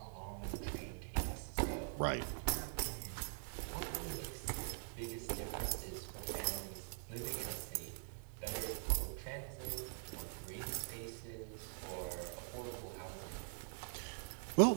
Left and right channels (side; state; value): left; silent; digital silence